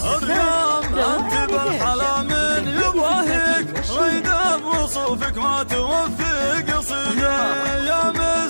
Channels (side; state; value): both; inverted; correlation -1.00